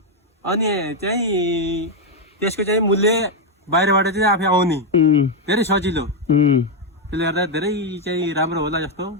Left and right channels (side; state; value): both; normal; correlation 0.02